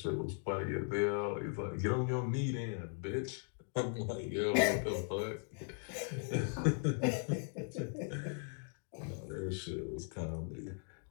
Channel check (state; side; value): silent; right; 52 dB below the other